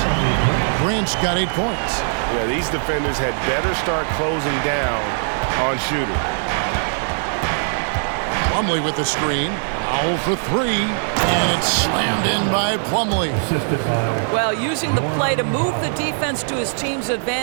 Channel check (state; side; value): silent; left; digital silence